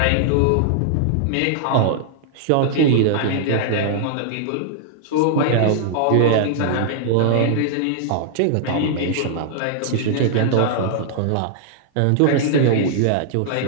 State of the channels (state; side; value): different; both; correlation -0.01